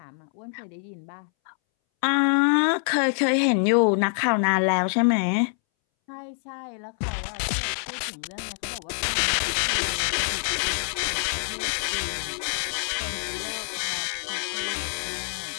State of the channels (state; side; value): silent; right; 61 dB below the other